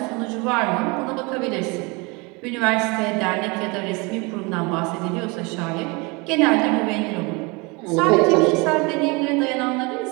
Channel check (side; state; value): left; quieter; 27.7 dB